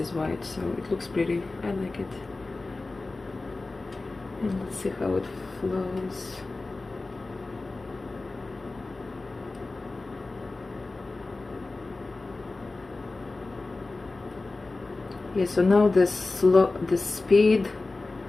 white, so it looks pretty. I like it. And let's see how it flows. Yeah, so now the speed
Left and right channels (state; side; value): quieter; right; 3.4 dB